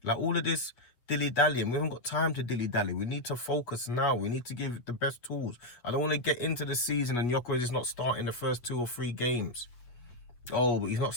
Like all of this dilly-dallying. We haven't got time to dilly-dally. We need to focus now. We need to give it the best tools. I don't want to get into the season and Gyökeres is not starting the first 2 or 3 games. Oh, but he's not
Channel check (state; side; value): late; right; 8.4 ms